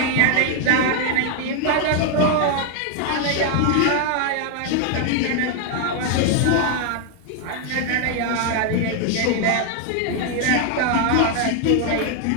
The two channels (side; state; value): both; different; correlation 0.00